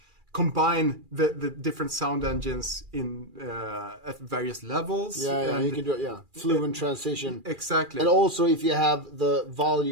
combine the different sound engines in at various levels. You can do it. Fluent transition. Exactly. And also, if you have the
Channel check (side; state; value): left; late; 2.4 ms